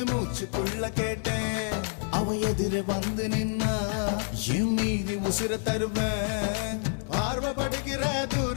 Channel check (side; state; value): right; silent; 59 dB below the other